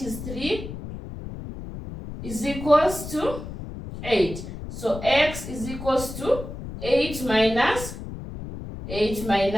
is 3, is equals to 8. So x is equals to 8 minus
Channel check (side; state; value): left; noise; rumble, 10 dB below the sound